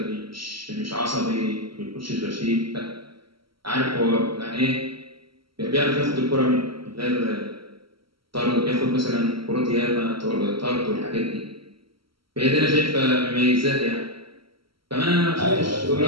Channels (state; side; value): late; left; 0.74 ms